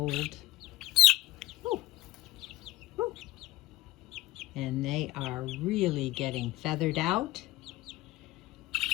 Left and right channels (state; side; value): quieter; right; 17.2 dB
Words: Ooh. Ooh. And they are really getting feathered out.